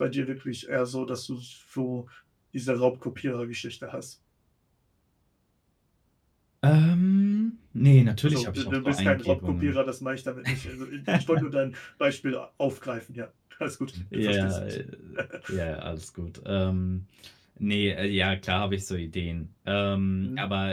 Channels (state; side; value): identical; both; correlation 1.00